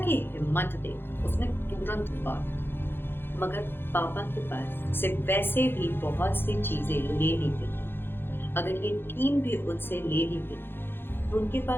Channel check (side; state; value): right; late; 0.10 ms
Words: हिम्मत देख, उसने तुरंत बात, मगर पापा के पास से वैसे भी बहुत सी चीजें लेनी थी। अगर ये टीम भी उनसे ले ली गई तो उनके